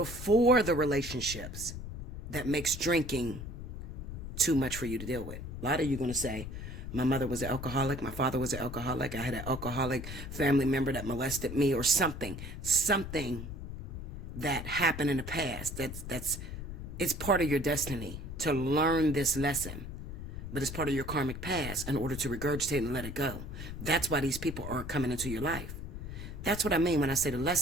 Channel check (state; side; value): noise; left; rumble, 8 dB below the sound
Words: the relationships that makes drinking too much for you to deal with? A lot of you are going to say, my mother was an alcoholic, my father was an alcoholic, I had an alcoholic family member that molested me, or something that happened in the past. It's part of your destiny to learn this lesson, but it's part of your karmic past in order to regurgitate and let it go. That's why these people aren't coming into your life. That's what I mean when I say the